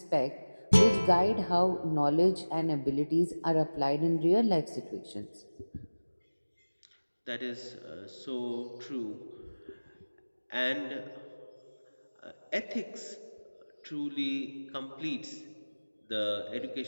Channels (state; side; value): inverted; both; correlation -1.00